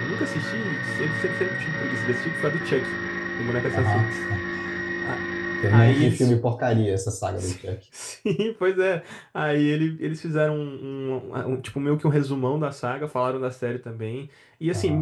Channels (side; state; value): both; identical; correlation 1.00